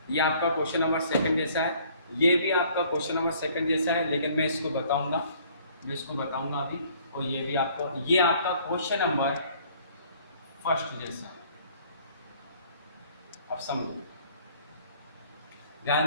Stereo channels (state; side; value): inverted; both; correlation -0.57